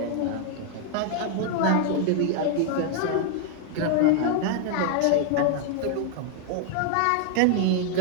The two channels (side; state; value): both; different; correlation 0.00